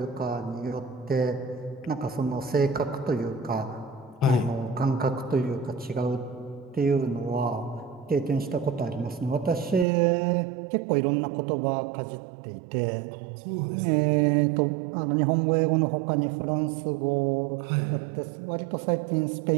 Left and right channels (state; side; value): drops out; left; at 9.9 s